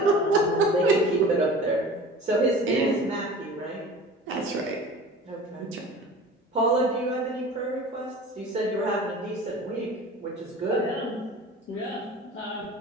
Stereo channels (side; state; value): both; normal; correlation 0.40